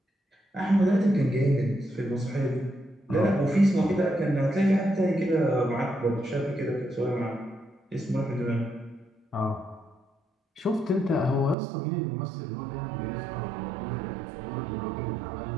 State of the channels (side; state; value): left; drops out; at 11.6 s